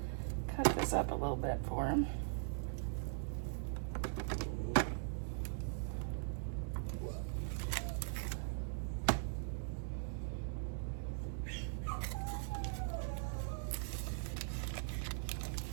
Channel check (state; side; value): silent; left; digital silence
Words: cut this up a little bit for him.